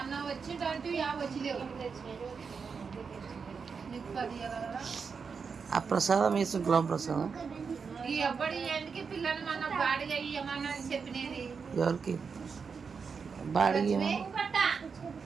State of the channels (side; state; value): left; quieter; 5.6 dB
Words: వచ్చిందంటే వచ్చిలేవు నీకు 10 కదా ఆ ప్రసాదం వేసుకున్నాం ప్రసాదం ఈ ఎవ్వడి ఏంటికి పిల్లలు మన బాడిగా ఇవ్వమన్నా చెప్పినది ఎవరికి బాడిగి